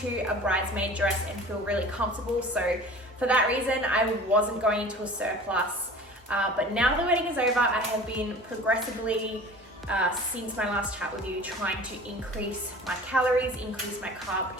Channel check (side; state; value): both; normal; correlation 0.41